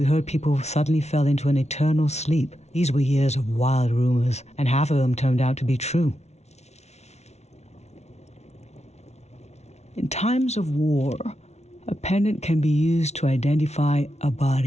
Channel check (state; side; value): late; right; 0.32 ms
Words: heard people suddenly fell into an eternal sleep. These were years of wild rumors, and half of them turned out to be true. In times of war, a pendant can be used to identify a